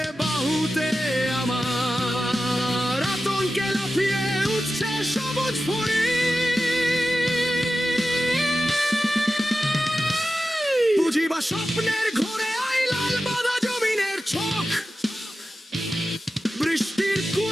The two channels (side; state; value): both; normal; correlation 0.93